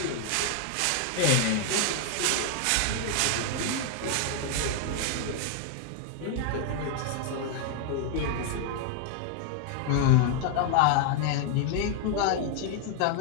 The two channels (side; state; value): both; different; correlation 0.00